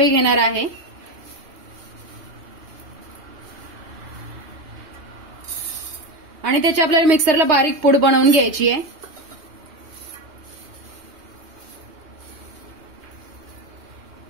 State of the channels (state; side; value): late; left; 3.2 ms